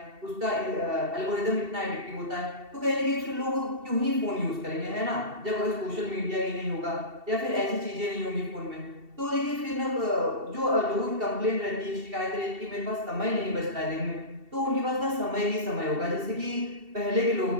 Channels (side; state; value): left; late; 2.7 ms